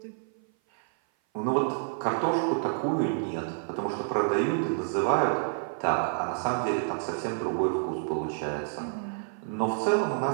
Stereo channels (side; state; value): left; silent; 56 dB below the other